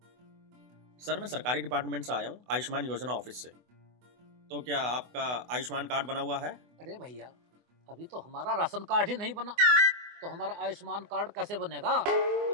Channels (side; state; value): left; late; 24 ms